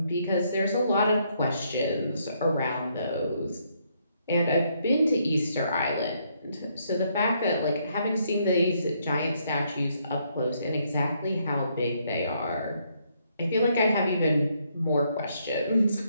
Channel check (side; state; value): both; inverted; correlation -0.73